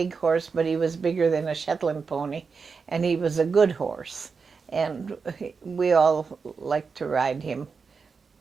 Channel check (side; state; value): left; quieter; 5.2 dB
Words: horse, but he was bigger than a Shetland pony, and he was a good horse. And we all liked to ride him.